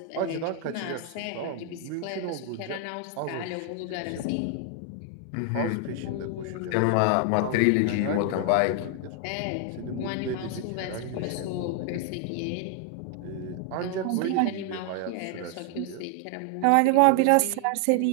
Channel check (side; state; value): both; different; correlation 0.00